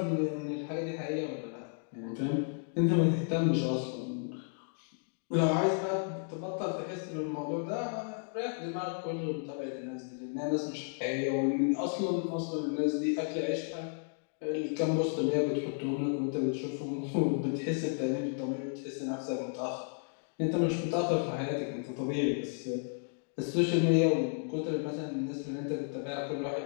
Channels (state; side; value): silent; right; 56 dB below the other